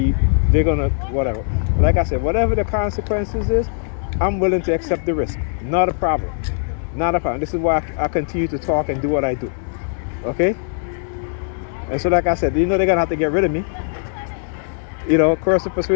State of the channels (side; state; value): right; silent; 66 dB below the other